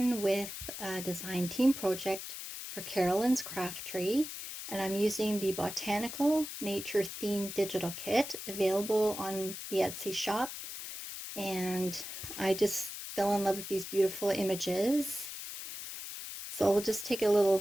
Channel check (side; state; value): left; noise; hiss, 8 dB below the sound